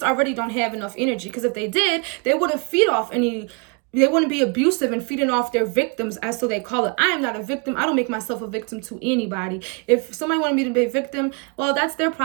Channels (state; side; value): quieter; left; 33.2 dB